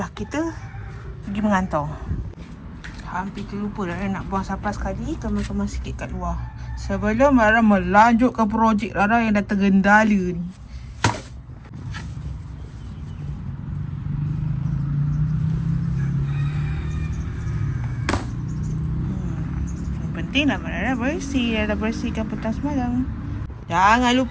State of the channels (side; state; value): both; identical; correlation 1.00